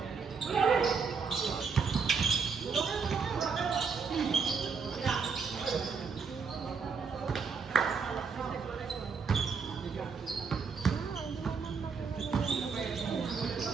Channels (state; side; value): quieter; left; 5.4 dB